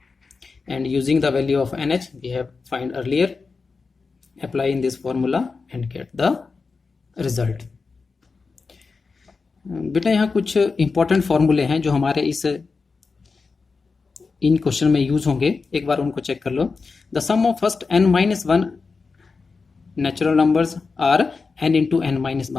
And using the value of nh we have find earlier, apply in this formula and get the result. बेटा यहाँ कुछ important फॉर्मूले हैं जो हमारे इन question में use होंगे, एक बार उनको चेक कर लो. The sum of first n minus 1 natural numbers are n into n minus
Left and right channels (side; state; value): right; quieter; 4.5 dB